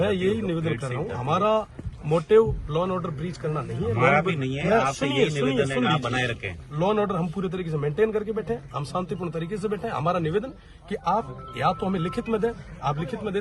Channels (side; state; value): both; identical; correlation 1.00